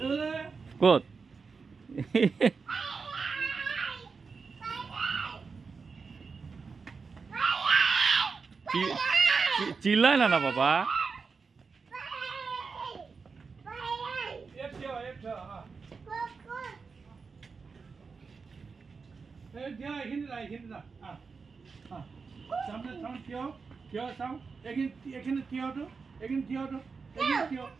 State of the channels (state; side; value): quieter; left; 5.0 dB